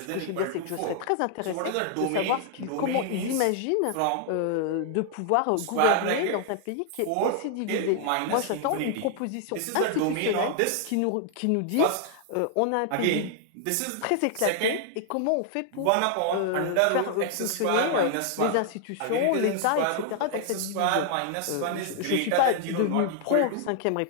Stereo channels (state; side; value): different; both; correlation 0.00